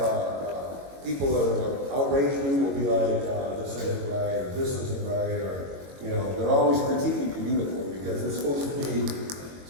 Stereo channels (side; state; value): left; late; 22 ms